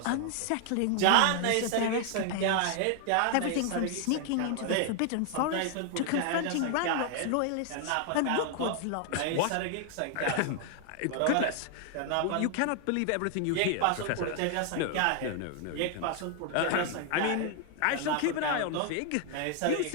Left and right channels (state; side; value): different; both; correlation 0.00